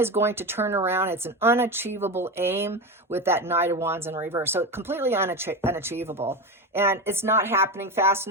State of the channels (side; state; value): both; normal; correlation 0.19